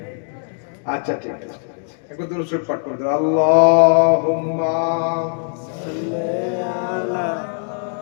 আচ্ছা ঠিক আছে, একবার দরুদ শরীফ পাঠ করতে। আল্লাহুম্মা সাল্লি আলা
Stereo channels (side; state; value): right; silent; digital silence